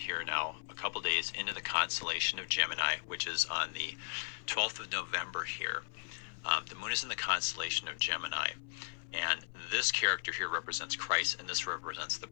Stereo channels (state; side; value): silent; right; 54 dB below the other